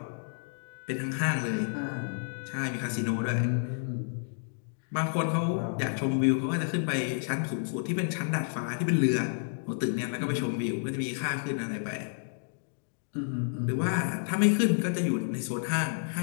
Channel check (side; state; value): right; silent; digital silence